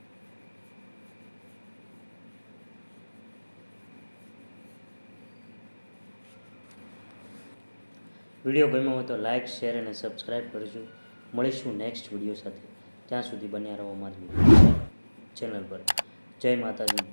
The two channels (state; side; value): inverted; both; correlation -1.00